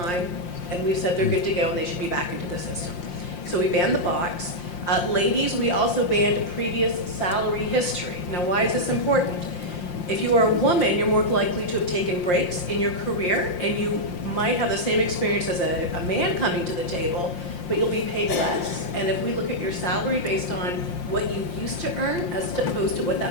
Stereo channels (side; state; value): right; late; 5.7 ms